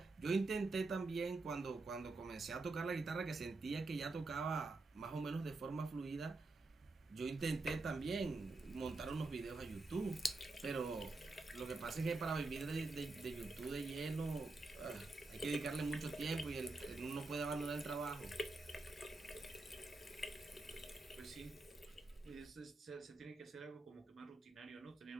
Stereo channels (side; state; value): left; quieter; 3.2 dB